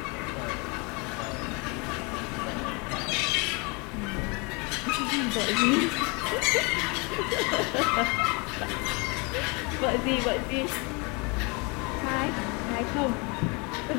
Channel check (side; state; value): right; quieter; 30.1 dB